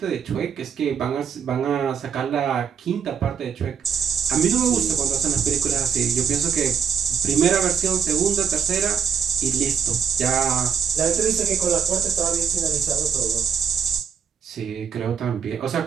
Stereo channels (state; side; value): quieter; left; 7.0 dB